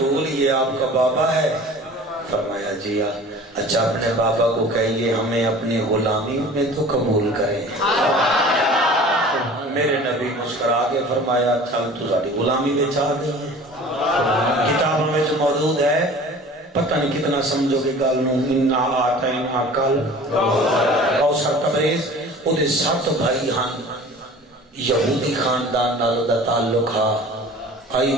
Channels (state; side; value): normal; both; correlation 0.43